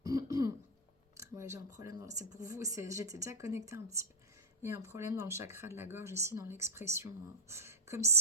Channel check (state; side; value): normal; both; correlation -0.05